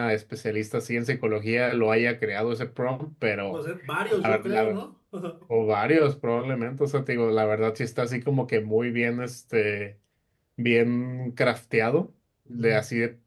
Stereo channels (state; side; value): identical; both; correlation 1.00